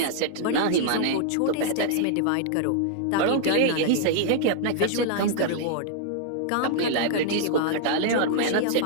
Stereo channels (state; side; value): different; both; correlation -0.01